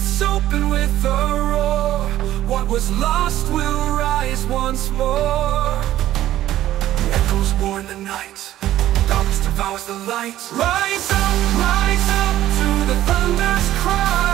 open with a roar. What was lost will rise once more. Echoes warn the night. Darkness devours the light. Rise up to the thunder's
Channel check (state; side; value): quieter; left; 13.6 dB